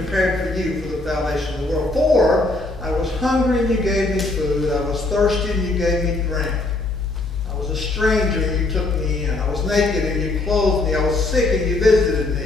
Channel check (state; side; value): quieter; right; 3.0 dB